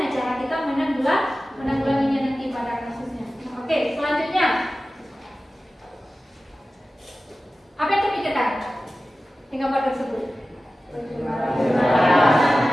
cara kita menanggulanginya nanti pada kasusnya. Oke, selanjutnya apa yang terpikirkan di gambar tersebut?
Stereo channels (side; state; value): both; normal; correlation 0.95